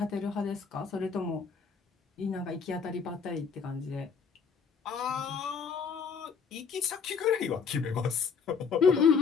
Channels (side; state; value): right; quieter; 5.8 dB